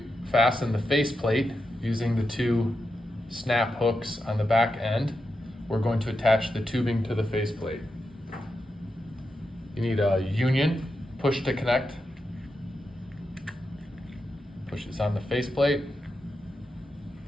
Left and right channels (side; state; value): both; normal; correlation 0.87